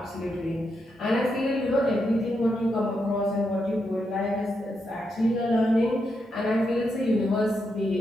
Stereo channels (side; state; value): both; normal; correlation 0.83